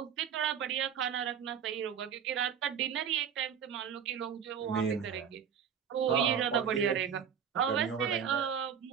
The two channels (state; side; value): quieter; left; 7.8 dB